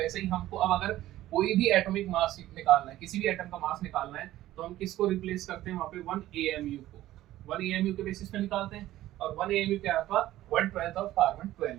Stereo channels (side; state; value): left; quieter; 14.7 dB